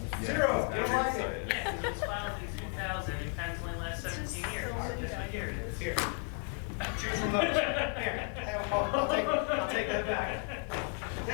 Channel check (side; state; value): right; quieter; 38.3 dB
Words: Zero, you don't like it? Yeah, because it was filed in 2000 and patents only last 17 years. Guess what year it is? Here. Choose from those. Here, I'll take that back.